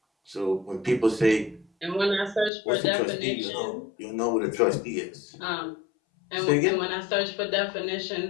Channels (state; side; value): drops out; right; at 2.5 s